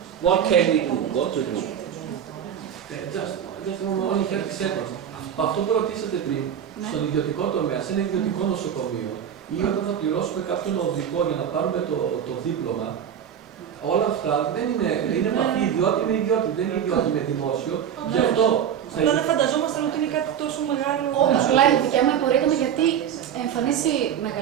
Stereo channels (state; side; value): quieter; left; 8.9 dB